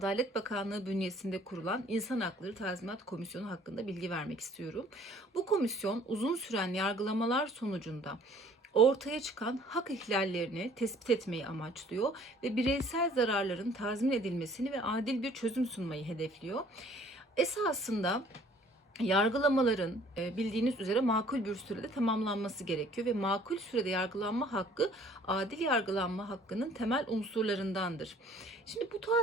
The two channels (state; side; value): normal; both; correlation 0.55